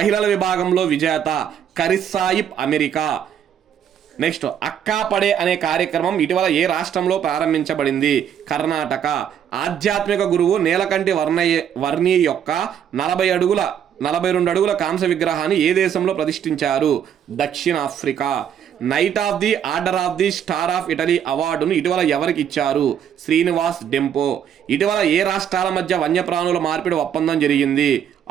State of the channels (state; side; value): quieter; left; 9.0 dB